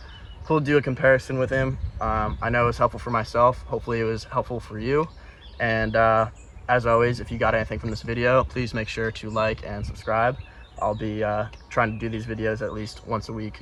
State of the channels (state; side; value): identical; both; correlation 1.00